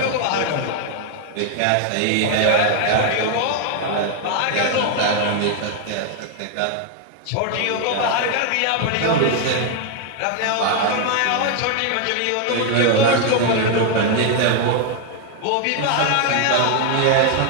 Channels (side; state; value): both; different; correlation 0.00